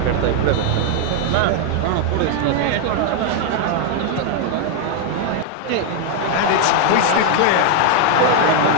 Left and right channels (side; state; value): both; different; correlation 0.00